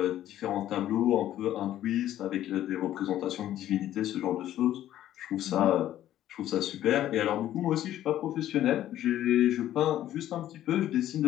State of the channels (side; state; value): right; quieter; 12.6 dB